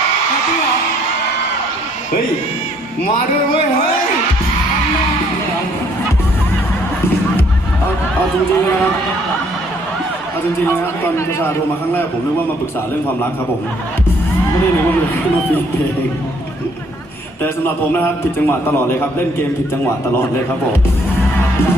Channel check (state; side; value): normal; both; correlation 0.64